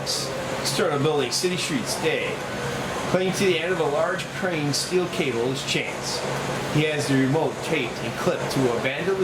External building, city streets, day. Clinging to the end of a large crane steel cable is Chance. He has the remote taped and clipped to a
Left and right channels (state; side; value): identical; both; correlation 1.00